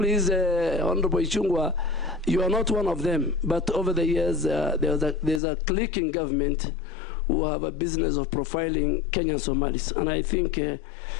Honorable Ichung'wah, you are not one of them. But over the years, there's a clique in government who have a business of profiling Kenyan Somalis, and I think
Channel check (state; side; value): drops out; right; at 5.4 s